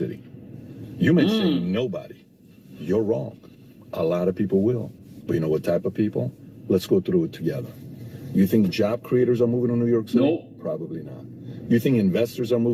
You may say nobody. You're wrong. A lot of people will. But you know what type of people? Let's go through it together. You think job creators are moving to New York City? Nope. Probably not. You think investors are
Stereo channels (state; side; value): identical; both; correlation 1.00